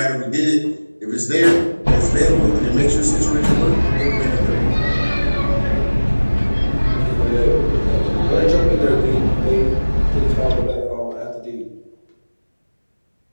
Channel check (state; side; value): inverted; both; correlation -1.00